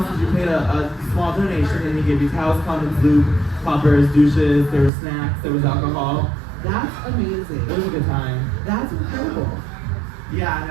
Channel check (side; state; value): left; drops out; at 4.9 s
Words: is you paid a small donation and he gave you towels, condoms, lube, poppers, douches, there were snacks, there was alcohol. That's amazing. It was a good time. That's incredible. Yeah,